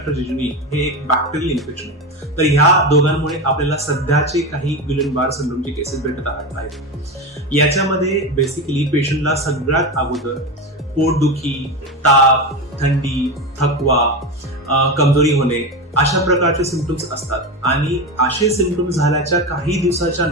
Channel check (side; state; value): both; normal; correlation 0.19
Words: जेजुनी हे एक बॅक्टेरियल इन्फेक्शन आहे. तर ह्या दोघांमुळे आपल्याला सध्याचे काही गिलेन-बार सिंड्रोमचे केसेस भेटत आहेत. याच्यामध्ये बेसिकली पेशंटला सगळ्यात अगोदर पोटदुखी, ताप, थंडी, थकवा, कमजोरी होणे अशा प्रकारचे सिम्पटम्स असतात. आणि असे सिम्पटम्स झाल्याच्या काही दिवसाच्या